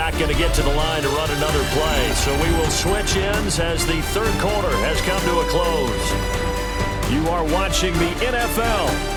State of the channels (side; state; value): both; identical; correlation 1.00